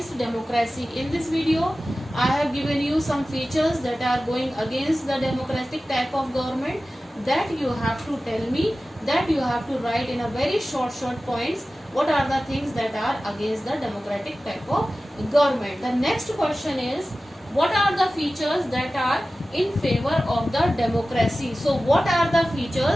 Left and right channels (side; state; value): both; normal; correlation 0.95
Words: democracy? In this video I have given you some features that are going against the democratic type of government, that you have to tell me, that you have to write in a very short points what are the things that are against the democratic type of government. The next question is, what are the features that are in favor of the democracy? So what are the